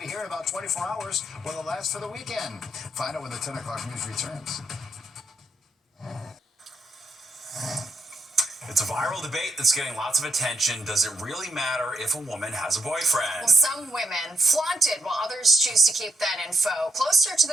here in about 24 hours. Will it last for the weekend? Find out when the 10 o'clock news returns. It's a viral debate that's getting lots of attention. Does it really matter if a woman has a boyfriend? Well, some women flaunt it while others choose to keep that info closer to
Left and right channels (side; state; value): both; normal; correlation 0.77